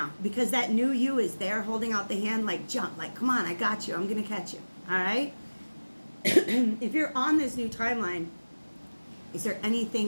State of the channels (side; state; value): both; inverted; correlation -1.00